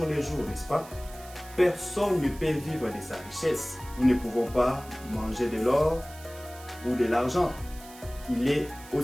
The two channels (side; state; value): right; noise; hiss, 19 dB below the sound